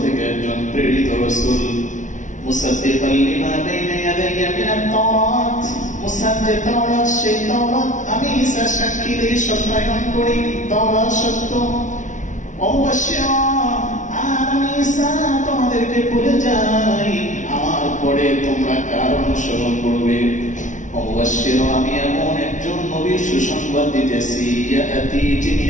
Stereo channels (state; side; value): late; right; 0.37 ms